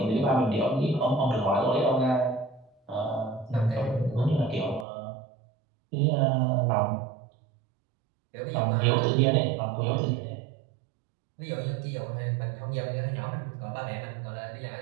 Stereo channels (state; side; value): drops out; left; at 4.9 s